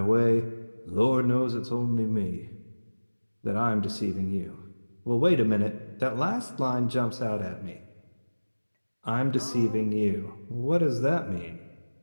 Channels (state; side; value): inverted; both; correlation -1.00